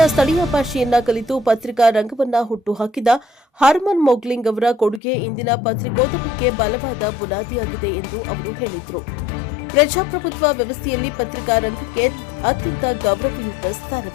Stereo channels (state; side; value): drops out; right; at 5.0 s